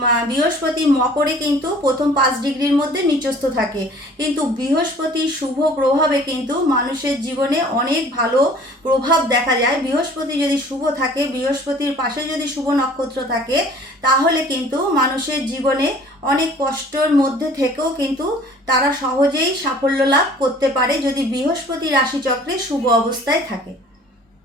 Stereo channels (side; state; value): both; normal; correlation 0.50